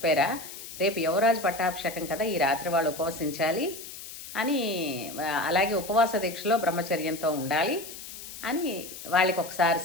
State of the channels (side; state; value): left; noise; hiss, 12 dB below the sound